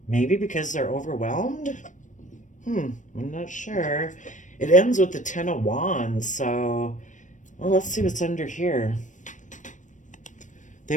Maybe because they're overwhelmed? I'm not sure. It ends with the Ten of Wands, so well, let's see what's under here. They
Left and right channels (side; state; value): right; late; 0.37 ms